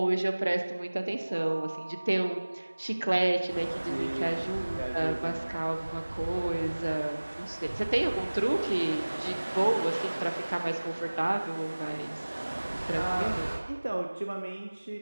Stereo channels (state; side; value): inverted; both; correlation -1.00